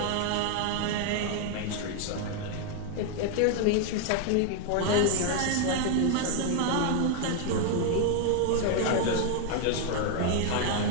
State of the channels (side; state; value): both; different; correlation 0.00